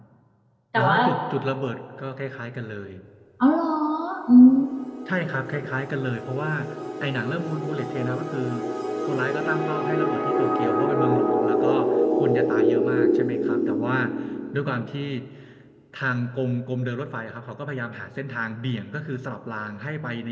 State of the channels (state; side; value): identical; both; correlation 1.00